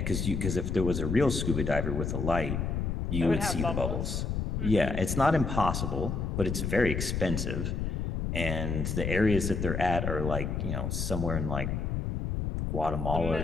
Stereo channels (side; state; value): left; noise; rumble, 1 dB below the sound